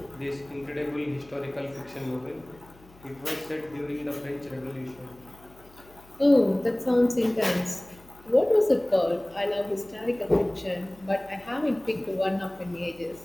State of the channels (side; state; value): left; noise; hum, 25 dB below the sound